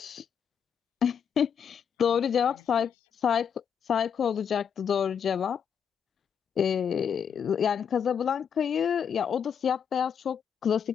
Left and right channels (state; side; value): quieter; right; 7.6 dB